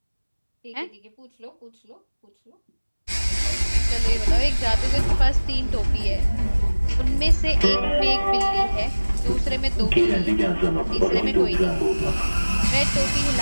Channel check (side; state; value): both; inverted; correlation -1.00